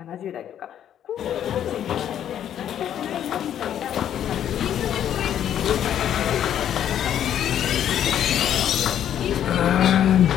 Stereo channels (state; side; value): quieter; right; 10.2 dB